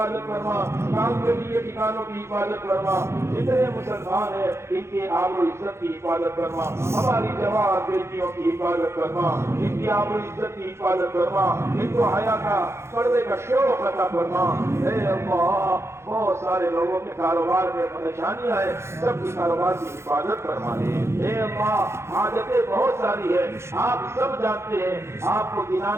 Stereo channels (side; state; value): left; late; 0.13 ms